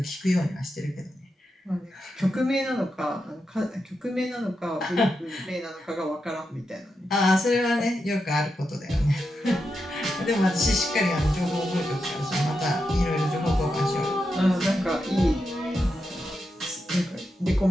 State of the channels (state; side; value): normal; both; correlation 0.87